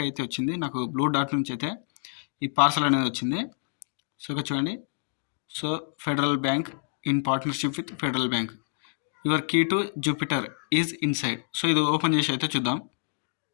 అయితే వచ్చింది. నాకు బ్లూ డాట్ నుంచి అయితే ఈ పార్సల్ అనేది వచ్చింది. సో, ఇక్కడ చూడండి. So, Federal Bank in partnership with Federal Bank. Your key to Jupiter is inside. So, ఇది ఓపెన్ చేసి అయితే చూద్దాం.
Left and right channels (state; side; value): silent; right; digital silence